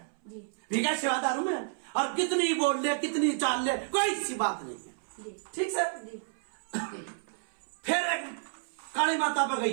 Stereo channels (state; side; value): silent; left; 57 dB below the other